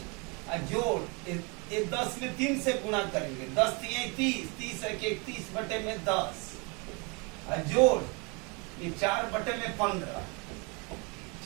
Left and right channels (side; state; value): left; quieter; 31.1 dB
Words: जोड़ ये 10 में 3 से गुणा करेंगे, 10 3 30, 30 1 31/10 जोड़ ये 4/15,